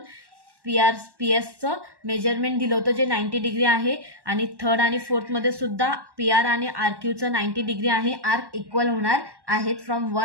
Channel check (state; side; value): late; left; 1.1 ms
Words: PSचं मेजरमेंट दिलं होतं जे 90 डिग्री आहे. आणि थर्ड आणि फोर्थमध्ये सुद्धा PR आणि RQचं 90 डिग्री आहे. आर्क इक्वल होणार आहेत फ्रॉम